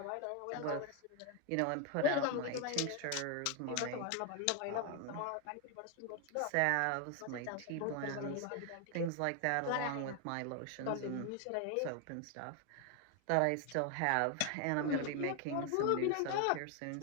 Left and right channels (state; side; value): different; both; correlation 0.01